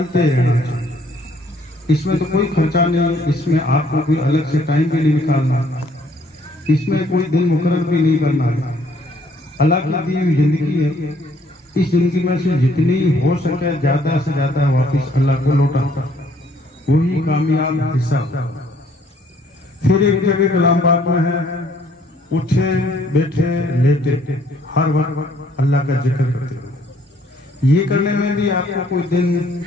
रहना चाहिए। इसमें तो कोई खर्चा नहीं, इसमें आपको कोई अलग से टाइम भी नहीं निकालना, इसमें कोई दिन मुकर्रर भी नहीं करना है। अल्लाह की दी हुई जिंदगी है, इस जिंदगी में से जितनी हो सके ज्यादा से ज्यादा वापस अल्लाह को लौटा, वही कामयाब हिस्सा। फिर एक जगह कलाम पाक में है, उठे बैठे लेटे हर वक्त अल्लाह का जिक्र करते हो। ये करने में भी आपको कोई दिन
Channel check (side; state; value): both; normal; correlation 0.63